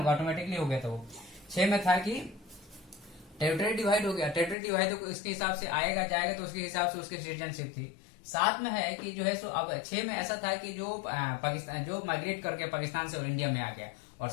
ऑटोमेटिकली हो गया था वो। 6 में था कि टेरिटरी डिवाइड हो गया। टेरिटरी डिवाइड तो इसके हिसाब से आएगा जाएगा, तो उसके हिसाब से उसकी सिटीजनशिप थी। 7 में है कि जो है सो अब 6 में ऐसा था कि जो पाकिस्तान जो माइग्रेट करके पाकिस्तान से इंडिया में आ गया, और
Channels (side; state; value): right; drops out; at 4.5 s